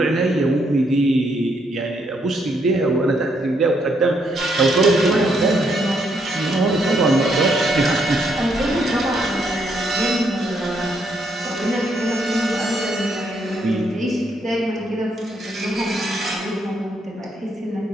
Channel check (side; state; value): both; normal; correlation 0.74